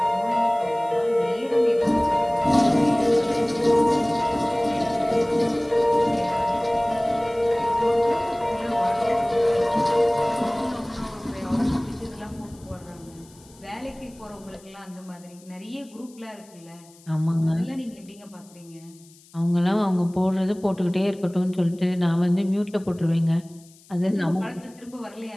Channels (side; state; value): left; noise; hiss, 26 dB below the sound